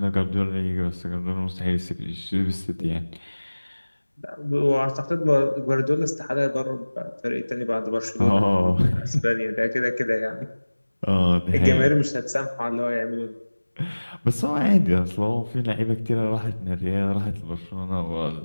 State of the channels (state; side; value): inverted; both; correlation -1.00